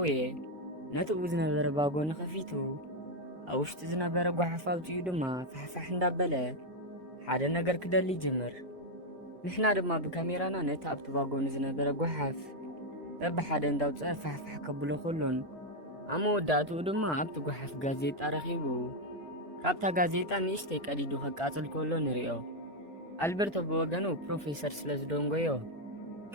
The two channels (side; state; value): left; late; 1.4 ms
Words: ነቲ ኡ ዝነበረ ባጎኒ ከፊቱ ኣብ ውሽጢ ዝነበረ ጓሓፍ ኣውፅኡ ድማ ፋሕፋሕ እንዳበለ ሓደ ነገር ክደሊ ጅምር። ንሕና ድማ ብካሜራና ነቲ ኣብቲ ባጎኒ ዝነበረ ጓሓፍ በብሓደ እንዳውፅአ ፋሕፋሕ ከብሎ ከሎን ኣብ መወዳእትኡ ድማ ኣብቲ ጓሓፍ ጋዜጣ ረኺቡ ካብታ ጋዜጣ ንእሽተይ ቀዲዱ ከቃፅል ከሎ ንሪኦ። ኣልቤርቶ ብወገኑ ፕሮፌሰር ስለ ዝደንጎዮ